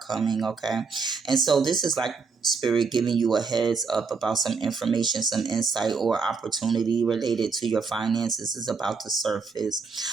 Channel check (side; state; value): left; quieter; 4.9 dB